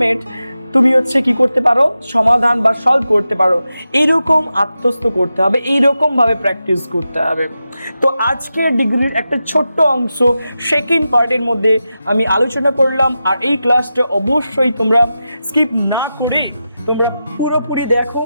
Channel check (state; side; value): inverted; both; correlation -0.91